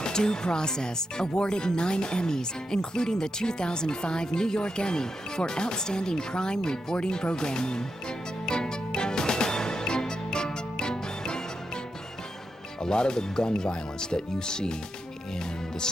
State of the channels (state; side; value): normal; both; correlation 0.86